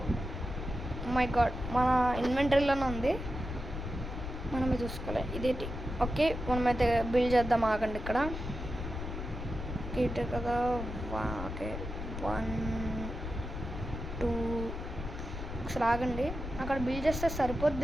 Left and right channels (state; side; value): noise; left; rumble, 6 dB below the sound